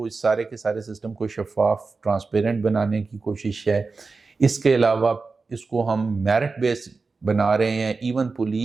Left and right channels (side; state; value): left; quieter; 4.2 dB